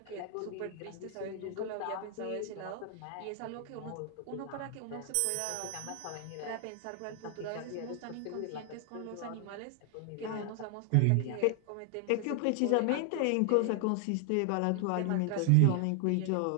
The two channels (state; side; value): different; both; correlation 0.00